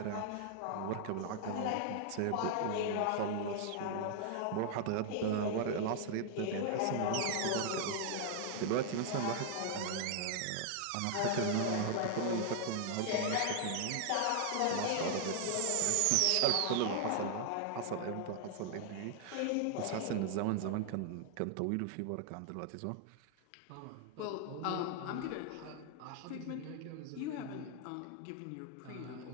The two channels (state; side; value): different; both; correlation 0.00